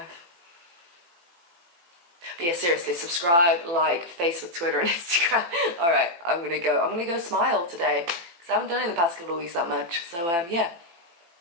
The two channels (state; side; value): late; left; 18 ms